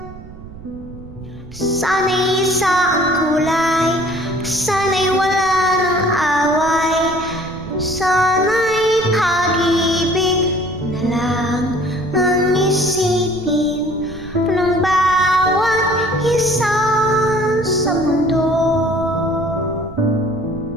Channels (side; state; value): right; noise; rumble, 16 dB below the sound